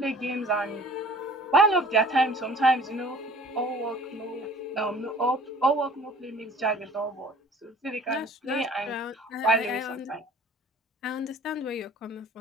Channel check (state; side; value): normal; both; correlation 0.48